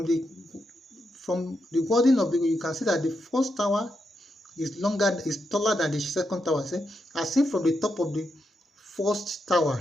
the wording of you can see that the first tower is taller than the second tower. As seen from the top of the first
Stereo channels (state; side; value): normal; both; correlation 0.84